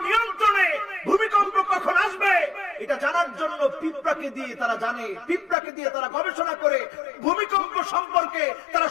নিয়ন্ত্রণে, ভূমিকম্প কখন আসবে এটা জানার জন্য পিঁপড়াকে দিয়ে তারা জানে, পিঁপড়াকে দিয়ে তারা গবেষণা করে ভূমিকম্প সম্পর্কে তারা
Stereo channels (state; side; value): drops out; right; at 5.6 s